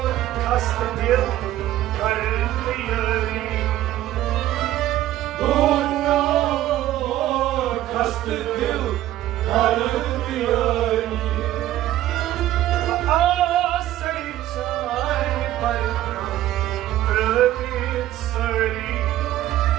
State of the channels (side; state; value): left; quieter; 13.9 dB